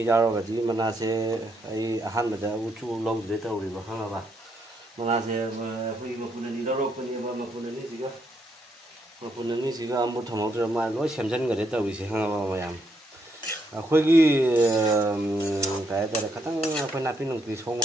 giao rồi thì mình là sẽ ai han mà đã uchu lâu rồi tao rồi mà khăng là bà mình là sẽ khi mà phụ nữ đi đâu rồi mà phụ nữ gì cơ mà phụ nữ gì cơ một thằng một mà nói xem chân người đấy tao bị sẽ khăng mà làm khôi cái khát tăng khôi nạp pin nông thủy sông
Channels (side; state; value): both; normal; correlation 0.76